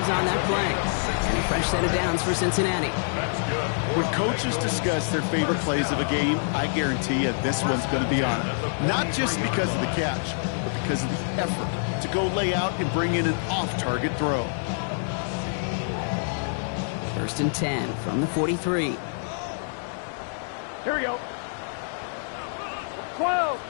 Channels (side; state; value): right; silent; digital silence